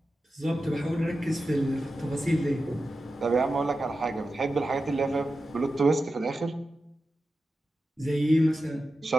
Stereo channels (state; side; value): normal; both; correlation 0.92